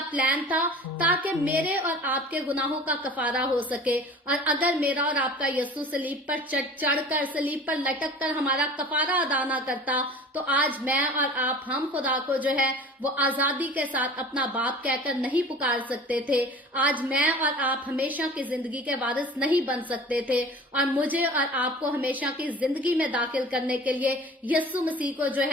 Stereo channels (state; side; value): normal; both; correlation 0.41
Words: پلان تھا تاکہ میرے اور آپ کے گناہوں کا کفارہ ہو سکے۔ اور اگر میرا اور آپ کا یسوع صلیب پر چڑھ کر، صلیب پر لٹک کر ہمارا کفارہ ادا نہ کرتا، تو آج میں اور آپ، ہم خدا کو جو ہے وہ آزادی کے ساتھ اپنا باپ کہہ کر نہیں پکار سکتے تھے۔ آج میں اور آپ ہمیشہ کی زندگی کے وارث نہیں بن سکتے تھے، اور مجھے اور آپ کو ہمیشہ کی زندگی میں داخل کرنے کے لیے یسوع مسیح کو جو